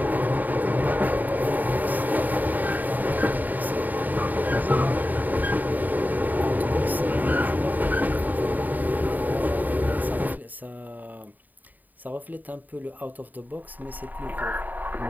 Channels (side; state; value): left; late; 0.084 ms